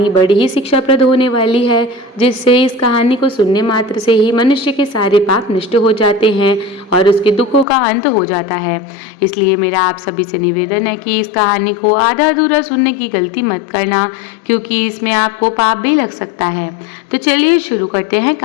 बड़ी ही शिक्षाप्रद होने वाली है, जिससे इस कहानी को सुनने मात्र से ही मनुष्य के सारे पाप नष्ट हो जाते हैं और उसके दुखों का अंत हो जाता है। इसलिए मेरा आप सभी से निवेदन है कि इस कहानी को आधा अधूरा सुनने की गलती मत करना, क्योंकि इसमें आपको पाप भी लग सकता है। तो चलिए शुरू करते हैं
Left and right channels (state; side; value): drops out; right; at 7.7 s